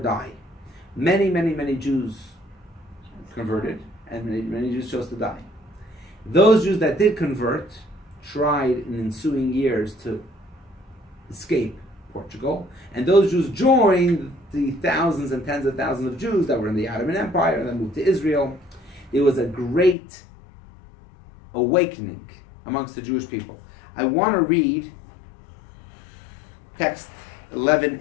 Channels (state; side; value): drops out; right; at 20.0 s